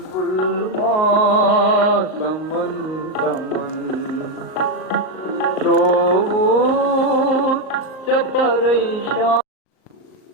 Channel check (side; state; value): right; late; 38 ms